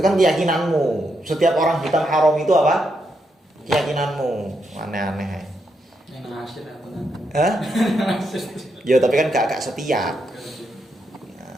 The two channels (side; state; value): both; normal; correlation 0.81